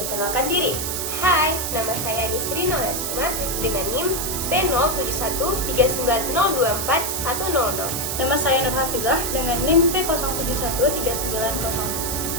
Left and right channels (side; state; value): right; noise; hiss, 2 dB below the sound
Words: diri. Hai, nama saya Nisri Noleskumar dengan NIM P07139024100. Nama saya Nur Hafizah dengan NIM